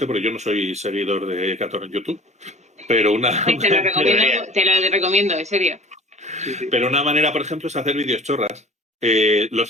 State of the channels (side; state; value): both; normal; correlation 0.44